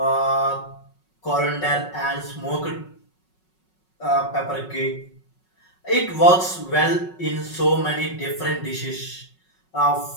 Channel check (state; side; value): late; right; 5.4 ms